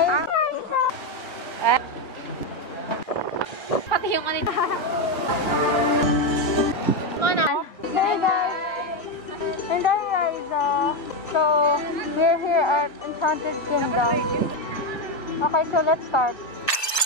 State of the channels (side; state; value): right; late; 1.4 ms